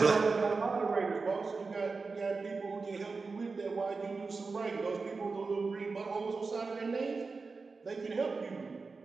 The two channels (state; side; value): quieter; left; 4.3 dB